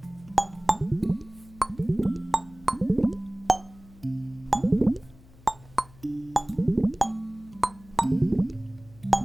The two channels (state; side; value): noise; left; hum, 24 dB below the sound